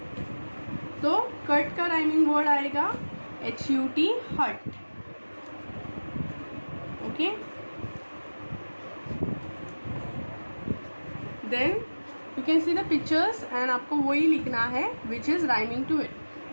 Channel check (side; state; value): both; inverted; correlation -1.00